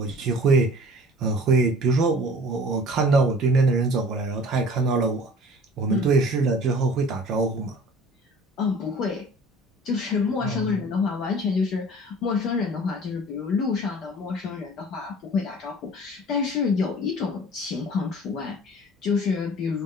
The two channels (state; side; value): normal; both; correlation 0.46